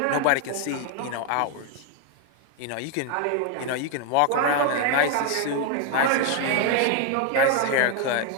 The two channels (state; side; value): different; both; correlation 0.01